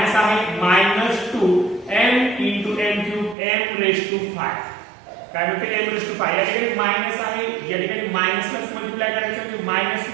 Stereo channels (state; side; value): drops out; left; at 3.4 s